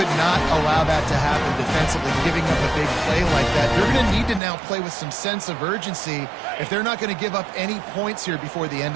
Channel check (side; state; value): left; drops out; at 4.4 s